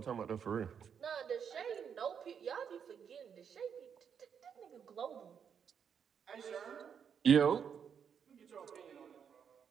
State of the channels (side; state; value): left; quieter; 7.4 dB